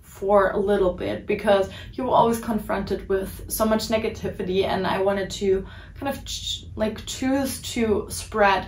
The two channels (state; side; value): identical; both; correlation 1.00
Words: for a little bit, because you're always confronted with so much negativity, and I wanted to kind of choose to spread